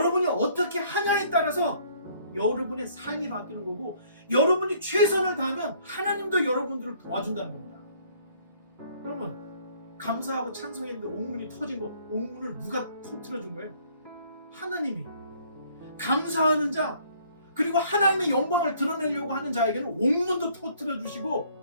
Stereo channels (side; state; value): both; inverted; correlation -0.60